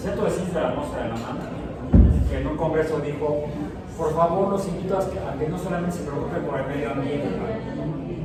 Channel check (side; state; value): both; identical; correlation 1.00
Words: Ciencias de la Atmósfera de la UNAM que en un congreso dijo: por favor, los invito a que no solamente se preocupen por el medio ambiente.